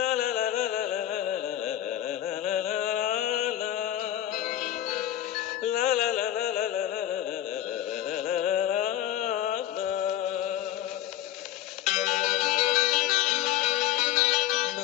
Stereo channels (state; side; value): quieter; right; 12.3 dB